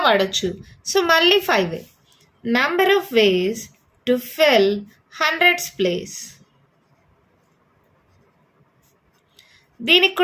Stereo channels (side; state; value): both; identical; correlation 1.00